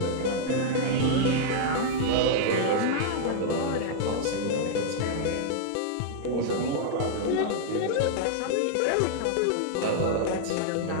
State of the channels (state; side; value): different; both; correlation -0.01